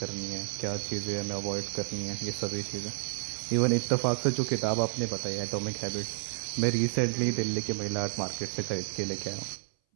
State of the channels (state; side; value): silent; left; 57 dB below the other